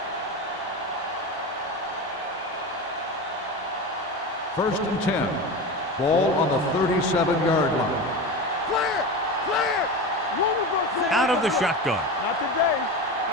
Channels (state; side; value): normal; both; correlation 0.25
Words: First and 10. Ball on the 37-yard line. Clear! Out of the shotgun. Not today.